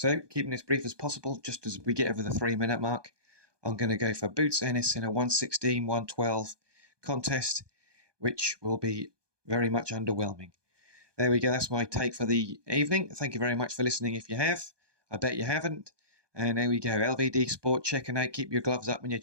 keeping this brief as possible, just as we get over the 3-minute mark, I'm going to go for Boots Ennis in a 116-112 contest, which will be very much underwhelming. There we go. That's my take for the evening. Thank you very much for listening if you have. I bet you haven't. And there we go. LVD Sport checking out. Keep your gloves up and your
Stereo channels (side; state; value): left; late; 1.2 ms